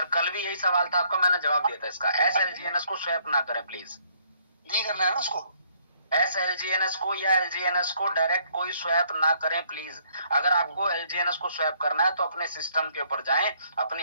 कल भी यही सवाल था आपका, मैंने जवाब दिया था इसका। SLGNS को स्वैप ना करें प्लीज। नहीं करना है ना उसको। SLGNS को या LGNS को डायरेक्ट कोई स्वैप ना करें प्लीज। अगर आपको LGNS को स्वैप करना है तो अपने सिस्टम के ऊपर जाएं,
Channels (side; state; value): both; inverted; correlation -0.65